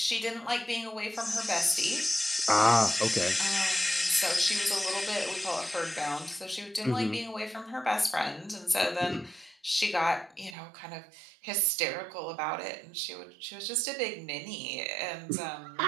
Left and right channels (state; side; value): drops out; left; at 10.6 s